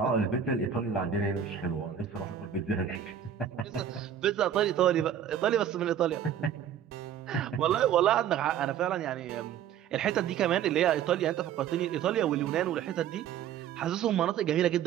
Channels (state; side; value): quieter; left; 9.1 dB